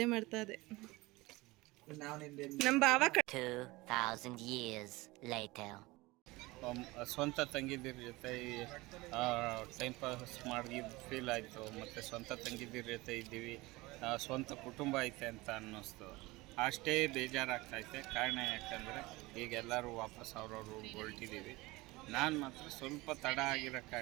ಮಾಡ್ತಾ ಇದೆ. ನಮ್ಮ ಬಾವ 2,000 years later. ಸ್ವಂತ ತಂಗಿದಿರ ಜೊತೆ ಟೈಮ್ ಪಾಸ್ ಮಾಡಿ ಫೀಲ್ ಆಯಿತು. ಮತ್ತು ಸ್ವಂತ ತಂಗಿದಿರ ಜೊತೆ ಇದ್ದೀವಿ, ಸ್ವಂತ ಕುಟುಂಬ ಐತೆ ಅಂತ ಅನ್ನಿಸ್ತು. ಅಷ್ಟೇ ಬೇಜಾರಾಗ್ತೈತೆ. ಕಾರಣ ಯಾಕಂದರೆ ಈಗ ಎಲ್ಲರೂ ವಾಪಸ್ ಅವ್ರವ್ರು ಹೊರಟಿದ್ದೀವಿ. ನಾನು ಮಾತ್ರ ಸ್ವಲ್ಪ ತಡ ಆಗಿರೋ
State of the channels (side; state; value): left; quieter; 21.5 dB